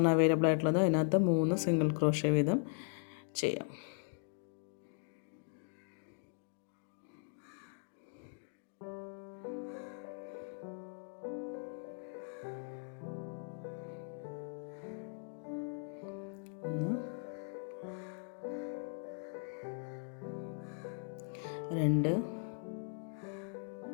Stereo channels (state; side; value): silent; right; 52 dB below the other